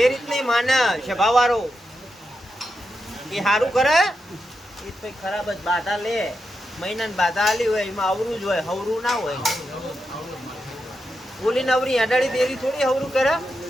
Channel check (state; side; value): normal; both; correlation 0.86